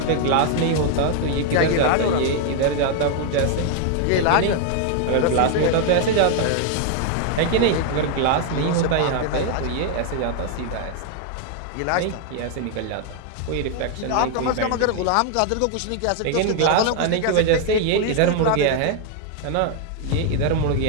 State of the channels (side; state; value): both; different; correlation 0.00